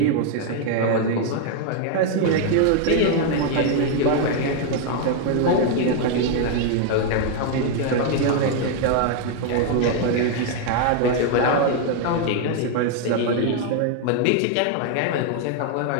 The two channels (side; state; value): both; different; correlation 0.00